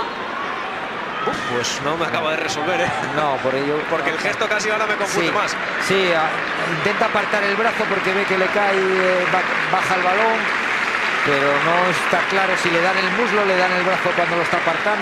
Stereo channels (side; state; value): both; identical; correlation 1.00